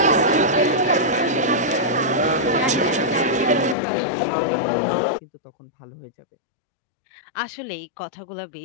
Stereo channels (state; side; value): drops out; right; at 3.8 s